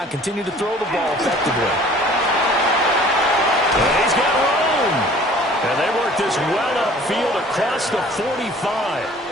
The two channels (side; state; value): both; normal; correlation 0.50